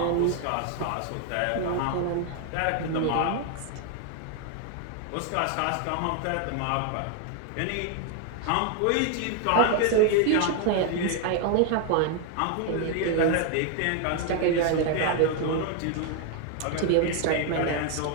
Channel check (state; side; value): different; both; correlation 0.00